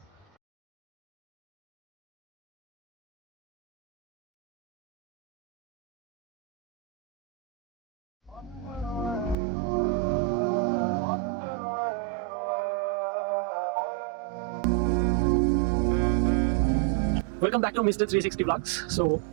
Welcome back to mister 360 vlogs. So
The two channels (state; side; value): drops out; left; at 9.3 s